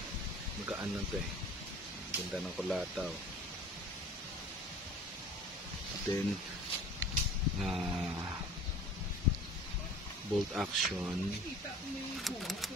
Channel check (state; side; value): normal; both; correlation 0.45